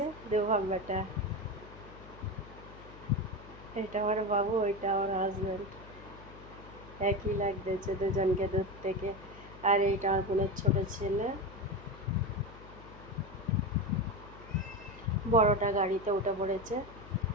দু বাপ বেটা, এটা আমার বাবু, ওইটা আমার হাজবেন্ড। একই লাগতেছে দুজনকে দূর থেকে। আর এইটা আমার বোনের ছোট ছেলে। বড়টা গাড়িতে উঠে পড়েছে,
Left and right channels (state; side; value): noise; left; hum, 17 dB below the sound